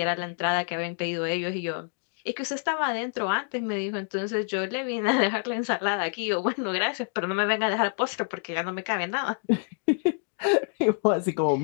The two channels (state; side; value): silent; right; 60 dB below the other